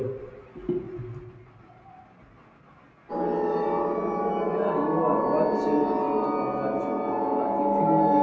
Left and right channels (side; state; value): both; identical; correlation 1.00